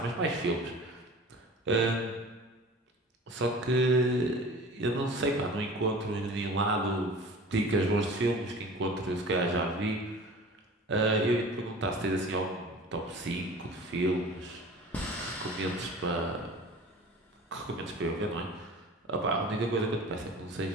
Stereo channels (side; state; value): both; normal; correlation 0.41